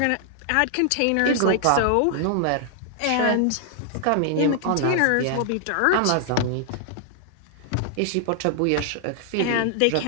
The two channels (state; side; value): different; both; correlation -0.01